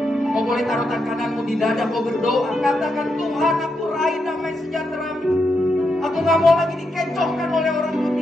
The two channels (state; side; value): normal; both; correlation 0.83